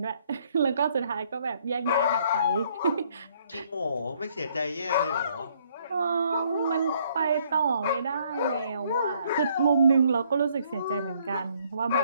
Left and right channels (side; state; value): both; inverted; correlation -0.67